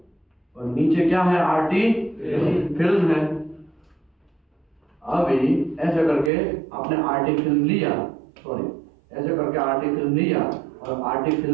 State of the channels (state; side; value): drops out; left; at 6.3 s